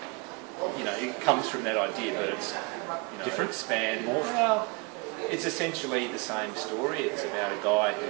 it comes from that idea, but it's different, expand more. Well, it's essentially the same story. It's about a guy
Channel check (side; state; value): left; quieter; 29.1 dB